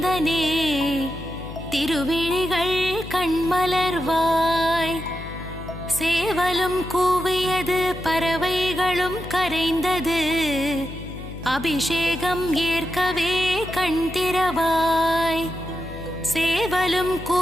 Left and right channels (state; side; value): noise; left; hum, 11 dB below the sound